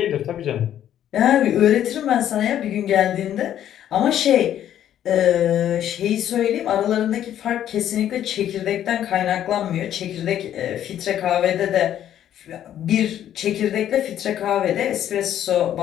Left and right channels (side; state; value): right; quieter; 10.9 dB